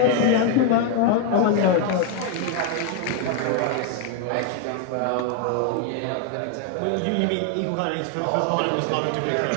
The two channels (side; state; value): both; different; correlation 0.01